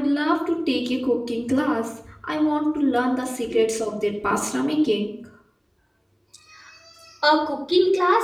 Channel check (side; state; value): both; identical; correlation 1.00